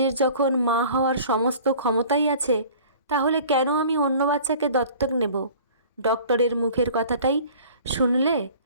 যখন মা হওয়ার সমস্ত ক্ষমতাই আছে, তাহলে কেন আমি অন্য বাচ্চাকে দত্তক নেব? ডক্টরের মুখের কথাটাই শুনলে,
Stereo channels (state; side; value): inverted; both; correlation -0.46